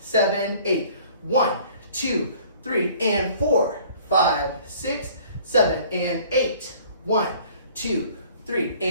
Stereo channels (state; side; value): inverted; both; correlation -0.53